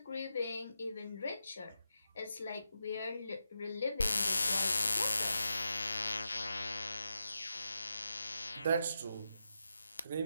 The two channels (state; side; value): inverted; both; correlation -0.88